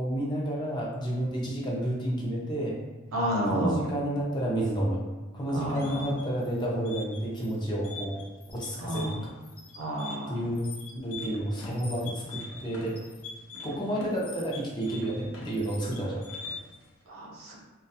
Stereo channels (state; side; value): normal; both; correlation 0.60